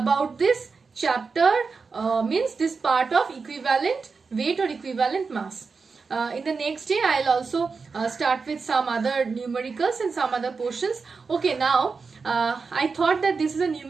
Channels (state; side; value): quieter; left; 4.8 dB